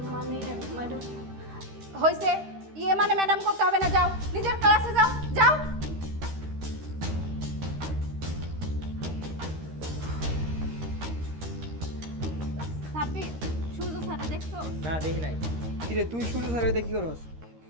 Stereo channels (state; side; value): late; left; 13 ms